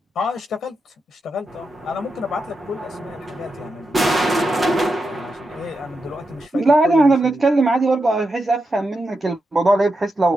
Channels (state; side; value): normal; both; correlation 0.87